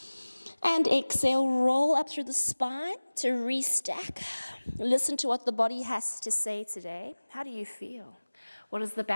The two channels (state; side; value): inverted; both; correlation -1.00